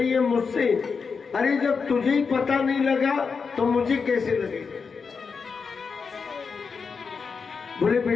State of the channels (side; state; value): right; quieter; 5.3 dB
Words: है मुझसे, अरे जब तुझे ही पता नहीं लगा तो मुझे कैसे लगेगा। बोले